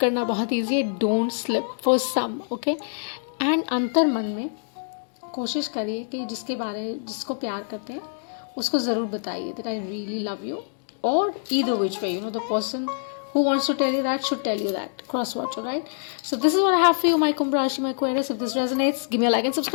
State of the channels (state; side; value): silent; right; digital silence